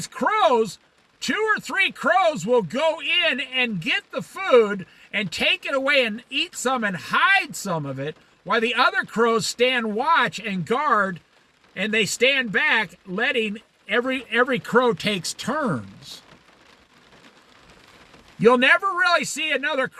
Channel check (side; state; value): both; identical; correlation 1.00